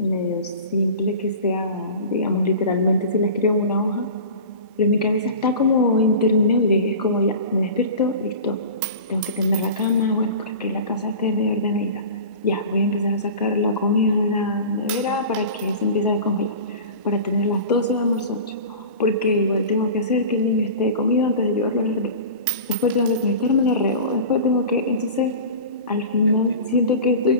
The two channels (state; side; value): inverted; both; correlation -0.35